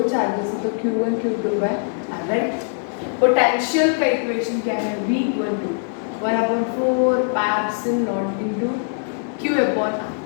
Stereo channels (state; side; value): silent; right; 64 dB below the other